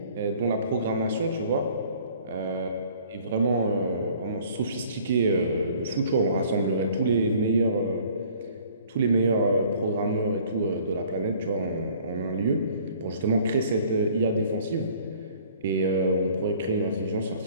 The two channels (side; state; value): both; inverted; correlation -0.54